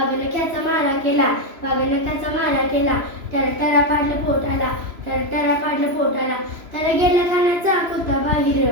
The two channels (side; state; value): left; late; 3.0 ms